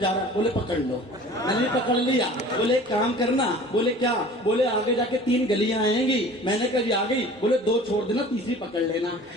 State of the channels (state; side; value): normal; both; correlation 0.44